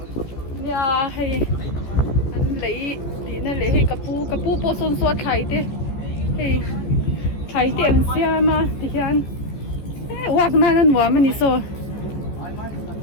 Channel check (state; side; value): late; right; 14 ms